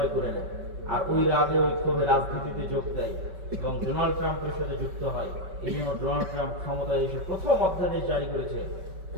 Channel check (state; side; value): late; left; 5.3 ms